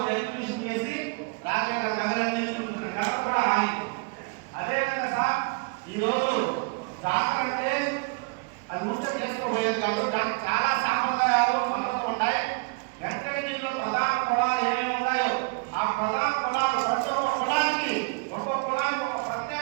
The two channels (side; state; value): left; quieter; 31.2 dB